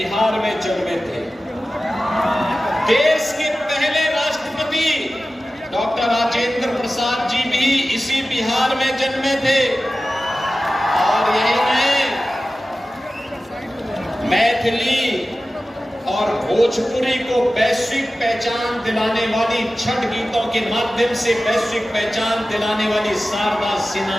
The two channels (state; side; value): normal; both; correlation 0.95